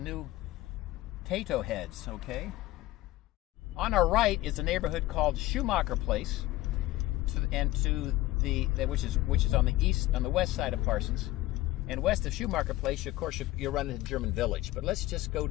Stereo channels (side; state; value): right; quieter; 17.2 dB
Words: Tato Heads, okay? On our right is a neighborhood called Schumacher Place, which is on the west side of Parsons. And west of Schumacher Place, of course, you'll run into German Village. But let's just go